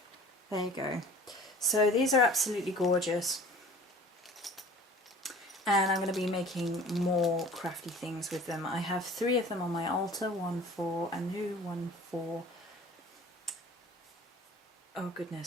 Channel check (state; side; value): normal; both; correlation 0.45